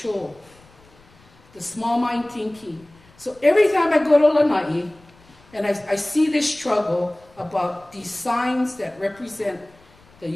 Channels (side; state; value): left; noise; rumble, 28 dB below the sound